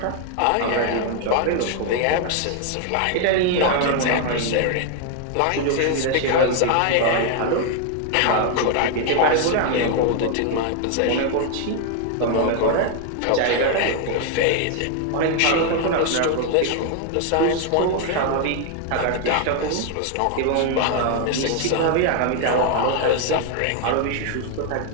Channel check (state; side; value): different; both; correlation 0.00